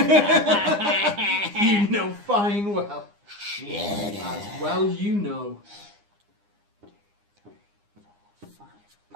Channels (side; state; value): left; late; 9.8 ms